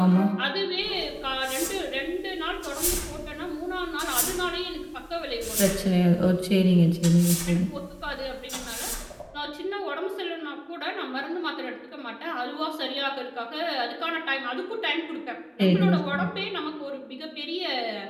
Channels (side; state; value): both; identical; correlation 1.00